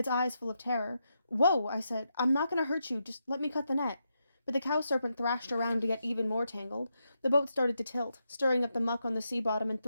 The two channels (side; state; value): both; inverted; correlation -0.84